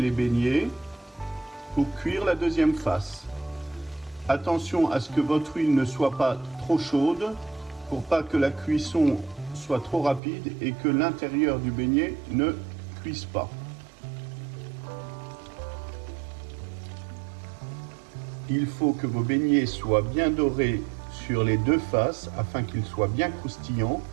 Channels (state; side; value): drops out; left; at 10.2 s